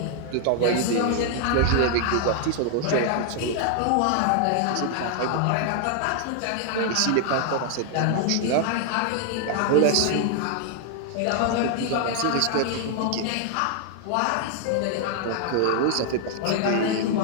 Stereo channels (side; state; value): both; different; correlation 0.00